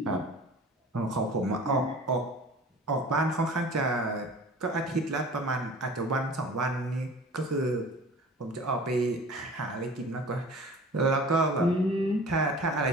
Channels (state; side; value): normal; both; correlation 0.42